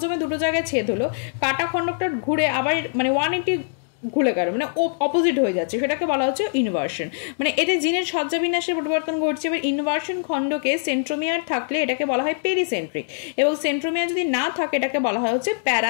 দুটো জায়গায় ছেদ হলো, কাটা খণ্ডকটা ঘুরে আবার মানে 180 ঘুরে গেল, মানে অপোজিট হয়ে যাচ্ছে, সেটাকে বলা হচ্ছে ইনভার্সন। মানে এতে জিনের সজ্জাবিন্যাসের পরিবর্তন ঘটছে। এবার ইনভার্সন খণ্ডকে সেন্ট্রোমিয়ার থাকলে এটাকে বলা হয় পেরিসেন্ট্রিক, এবং সেন্ট্রোমিয়ার যদি না থাকে এটাকে বলা হয় হচ্ছে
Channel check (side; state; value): right; silent; digital silence